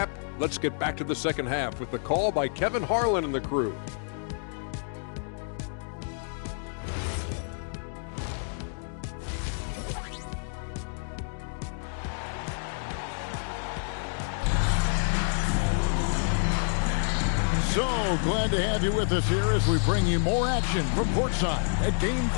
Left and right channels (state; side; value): silent; right; digital silence